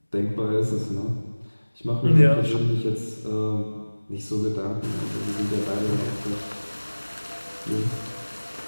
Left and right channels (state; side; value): inverted; both; correlation -1.00